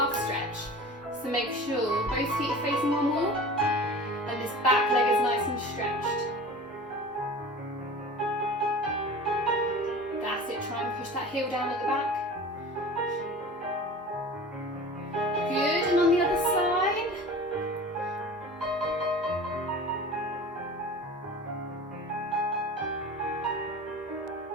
stretch. So make sure both feet are facing one wall and this back leg is nice and stretched. That's it, try and push that heel down at the back. Good, and on the other side.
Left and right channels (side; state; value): both; normal; correlation 0.38